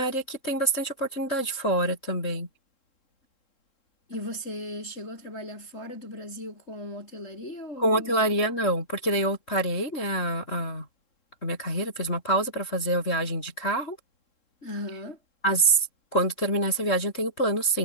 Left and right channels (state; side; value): late; right; 3.7 ms